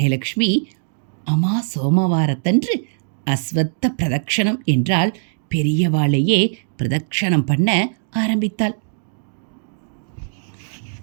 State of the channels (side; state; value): left; silent; digital silence